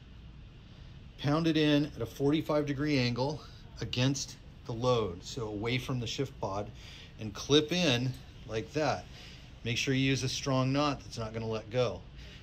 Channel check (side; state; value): both; identical; correlation 1.00